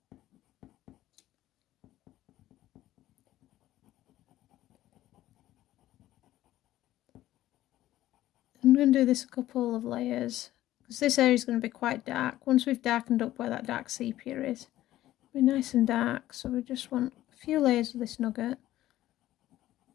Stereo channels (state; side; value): quieter; right; 14.5 dB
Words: I'm going to do this a couple of layers because this area is going to be quite dark. Once we've darkened up where that dark sepia is, it'll be nice and dark, so we just want a few layers of this Nougat.